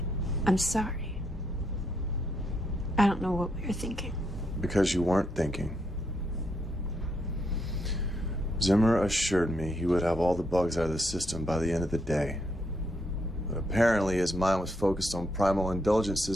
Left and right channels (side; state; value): both; normal; correlation 0.77